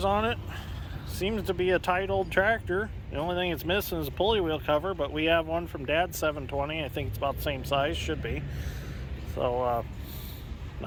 on it. Seems to be a tight old tractor. The only thing it's missing is a pulley wheel cover, but we have one from Dad's 720. I think it's about the same size, should be. So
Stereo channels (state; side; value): identical; both; correlation 1.00